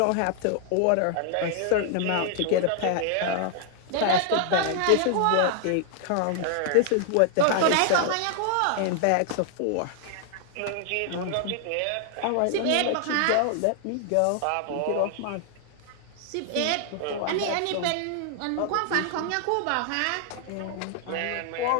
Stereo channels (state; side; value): different; both; correlation 0.00